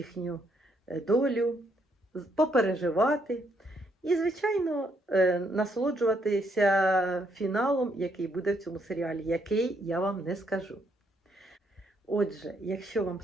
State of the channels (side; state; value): both; normal; correlation 0.73